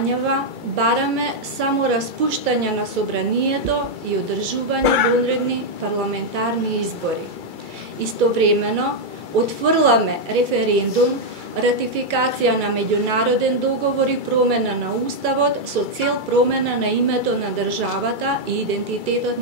бараме само распуштање на собранието и одржување вонредни парламентарни избори. Истовремено, отфрламе референдум, ратификација на меѓународен договор и промена на Уставот со цел промена на името на државата и идентитетот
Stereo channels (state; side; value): late; left; 2.3 ms